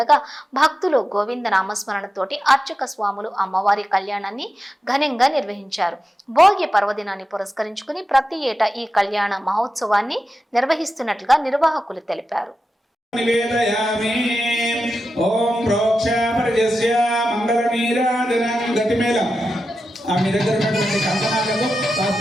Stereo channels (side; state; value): both; normal; correlation 0.91